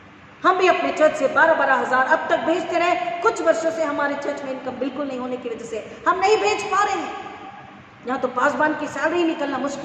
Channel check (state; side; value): identical; both; correlation 1.00